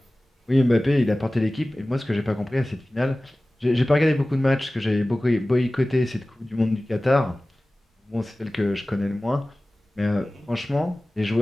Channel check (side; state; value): both; normal; correlation 0.97